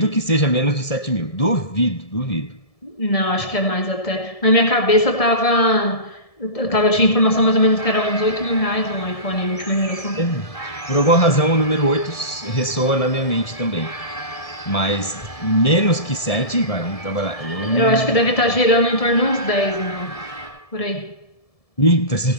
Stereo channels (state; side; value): late; right; 1.7 ms